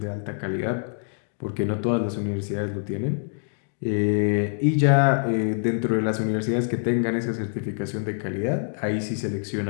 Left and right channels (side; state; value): right; silent; digital silence